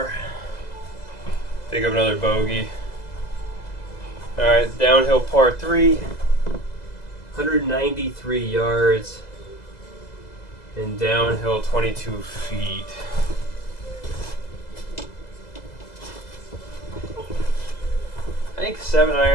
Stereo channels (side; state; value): right; late; 2.0 ms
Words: Pick up another bogey. Alright, downhill par 3. 193 yards. And downhill 22 feet. I think